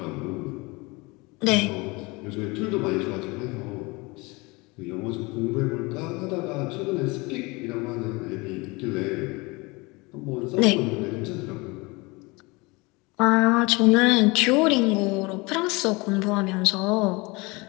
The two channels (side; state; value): right; quieter; 25.3 dB